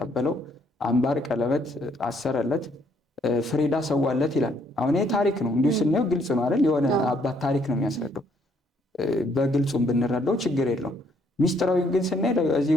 አምባር ቀለበት አሰረለት፣ ፍሪዳ ሰዋለት ይላል። አሁን ይሄ ታሪክ ነው፣ እንዲሁ ስናየው ግልጽ ነው አይደል? የሆነ አባት ታሪክ ነው የሚያስረዳው። በግልጹም ብንረዳው ችግር የለውም። ሚስጥራዊ ግን ስናይ እዚህ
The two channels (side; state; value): both; normal; correlation 0.68